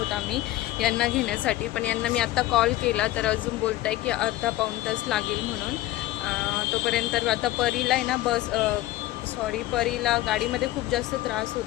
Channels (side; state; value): right; quieter; 16.1 dB